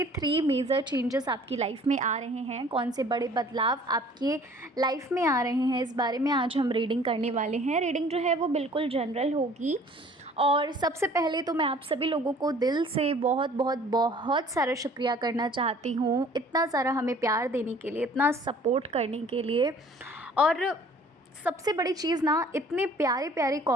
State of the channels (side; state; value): both; normal; correlation 0.52